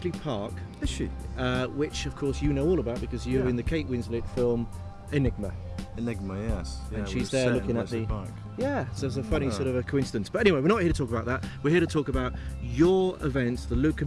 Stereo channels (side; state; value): both; identical; correlation 1.00